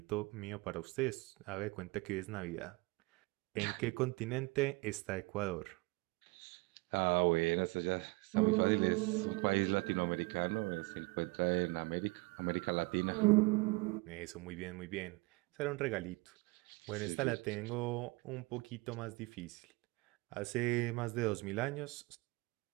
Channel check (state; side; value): quieter; left; 25.1 dB